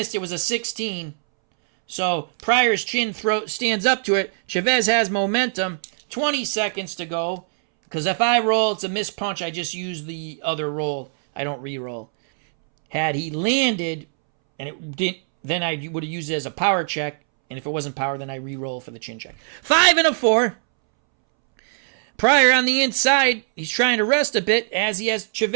It was a 16. So Pryor's chin throat stands up to it. Chavez has momentum. 20 seconds to go. Because if I roll, it's a missed punch. I just use the other roll. I don't re-roll. Had he landed, and it didn't, then I would have used it as a power check. And if it wasn't power, then I re-roll for the chin check. 5 and a 4. Pryor on the inside, he's trying to rest a bit as he has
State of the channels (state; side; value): silent; left; 64 dB below the other